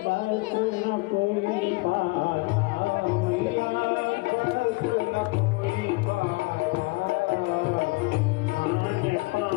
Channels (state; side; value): quieter; right; 24.6 dB